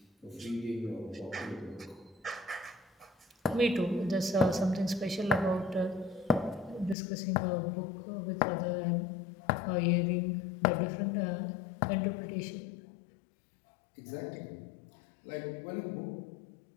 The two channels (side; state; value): right; drops out; at 7.0 s